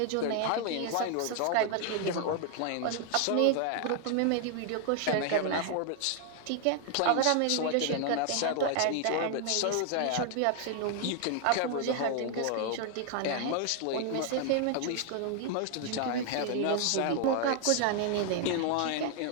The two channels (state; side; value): different; both; correlation 0.00